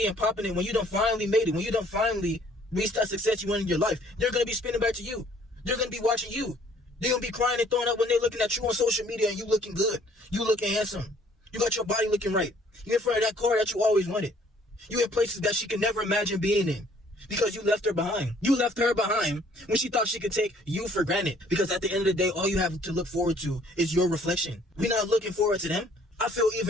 and popping it, when you done finally made it, when you done finally reached that success you want in your life, they're going to be spinning back to you. They're going to be watching you. They're going to be crying and throwing up when they're looking at you on social media and you looking good. You looking handsome. You got your body looking right. You're in front of that car that you always wanted. You in places that she could never imagine being in because you left her behind. You left her behind when she thought she could take you for granted, because at the end of the day, all you have to look forward to is your reflection. We're not looking forward to them. I feel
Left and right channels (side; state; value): both; normal; correlation 0.60